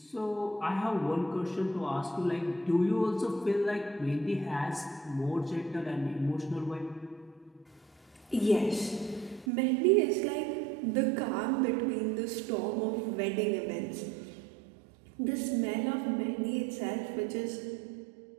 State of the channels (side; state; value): left; drops out; at 9.5 s